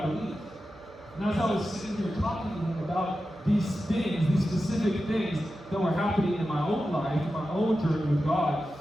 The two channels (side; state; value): both; normal; correlation 0.92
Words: believe. And as I was sitting here talking to him about these things, these specific things that were happening in my own life, in my own journey with God,